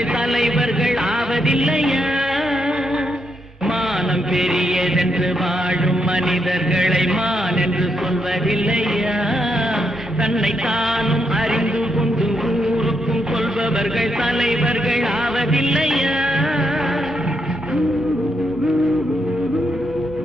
தலைவர்கள் ஆவதில்லையா? மானம் பெரியதென்று வாழும் மனிதர்களை மான் என்று சொல்வதில்லையா? தன்னை தானும் அறிந்து கொண்டு ஊருக்கும் சொல்பவர்கள் தலைவர்கள் ஆவதில்லையா?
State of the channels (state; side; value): normal; both; correlation 0.80